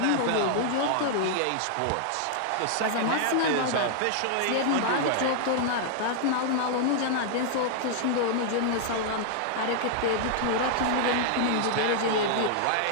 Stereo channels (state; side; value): different; both; correlation -0.01